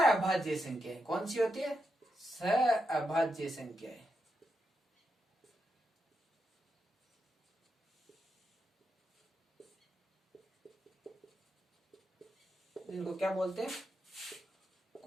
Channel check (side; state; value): both; normal; correlation 0.84